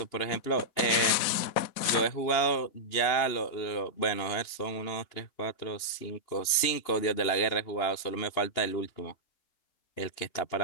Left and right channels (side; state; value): right; late; 2.9 ms